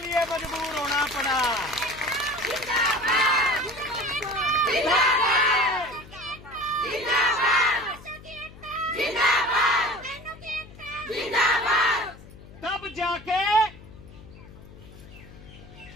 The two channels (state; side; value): noise; left; hum, 19 dB below the sound